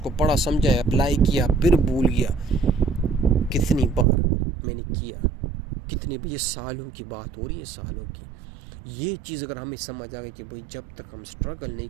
پڑھا، سمجھا، اپلائی کیا، پھر بھول گیا. کتنی بار میں نے کیا، کتنی بار، یہ سالوں کی بات ہو رہی ہے، سالوں کی. یہ چیز اگر ہمیں سمجھ آ گئی کہ بھئی جب تک ہم سٹرگل نہیں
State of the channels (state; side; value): drops out; left; at 4.0 s